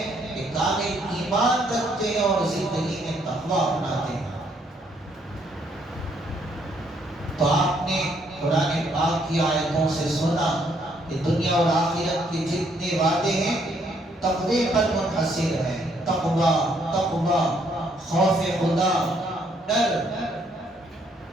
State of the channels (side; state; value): both; normal; correlation 0.70